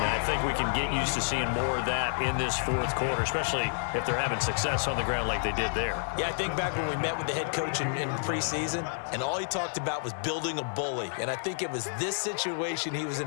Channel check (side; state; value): right; silent; digital silence